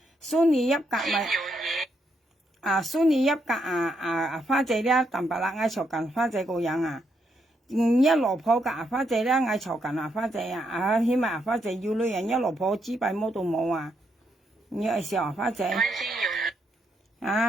蘇尼一格咪蘇尼一格花姐咧，淡白啦，嗌嘈緊花姐個樣啊，一落鋪個花姐咧，嗌嘈緊花姐啊，起碼花姐要女人一落鋪支幣冇到冇啊，你愛笑花姐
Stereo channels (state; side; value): normal; both; correlation 0.78